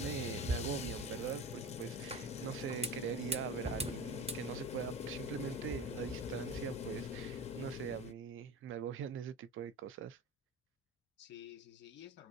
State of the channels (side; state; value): both; normal; correlation 0.30